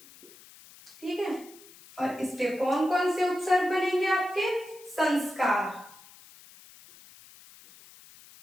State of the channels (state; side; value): noise; left; hiss, 22 dB below the sound